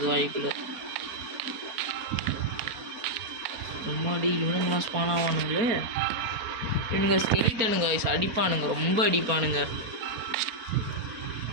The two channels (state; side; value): late; left; 4.3 ms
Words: வாய்க்குள்ள. முன்னாடி இவனுங்களாம் ஸ்பான் ஆவானுங்களே. இவனுங்க ஸ்கெலிட்டனுங்க அடிப்பானுங்க, ரொம்ப அடிப்பானுங்க.